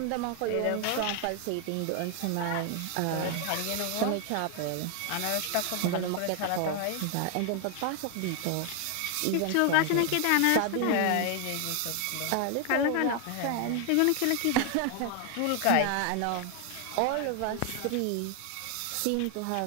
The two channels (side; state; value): both; different; correlation 0.00